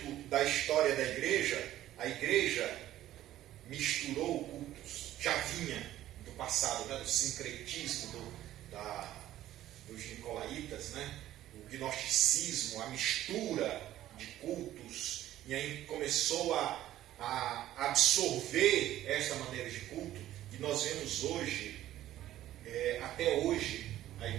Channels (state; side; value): quieter; left; 13.5 dB